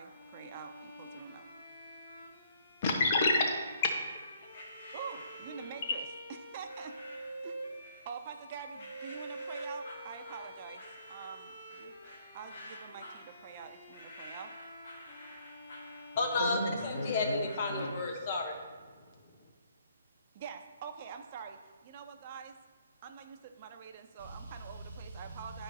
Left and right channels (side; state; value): both; inverted; correlation -0.64